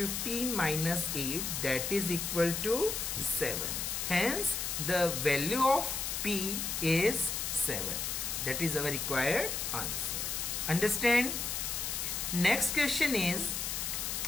minus 8, that is equal to 7. Hence the value of p is 7. That is our required answer. Understand? Next question is,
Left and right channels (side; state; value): left; noise; hiss, 2 dB below the sound